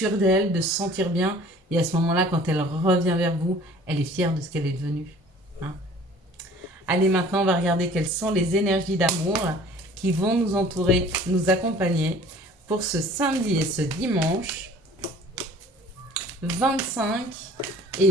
d'elle, de se sentir bien. Et à ce moment-là, quand elle revient vers vous, elle est fière de ce qu'elle est devenue. Hein. Allez, maintenant, on va regarder quelles sont les énergies d'amour qui vont nous entourer, nous accompagner pour ce samedi et ce dimanche 25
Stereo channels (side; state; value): both; normal; correlation 0.49